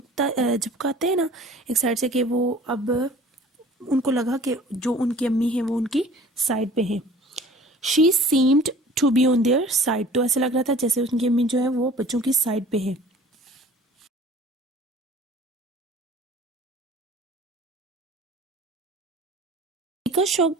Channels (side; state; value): both; normal; correlation 0.47